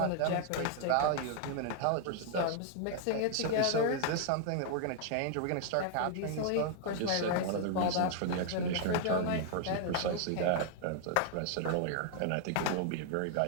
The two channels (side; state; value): both; different; correlation 0.00